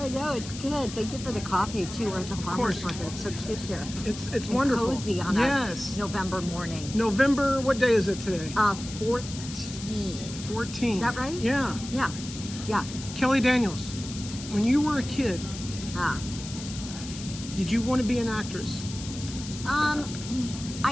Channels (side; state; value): left; noise; hiss, 12 dB below the sound